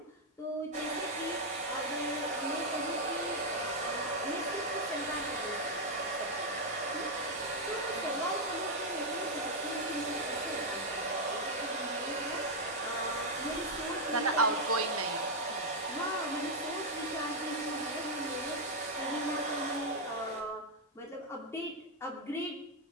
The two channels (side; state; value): both; normal; correlation -0.01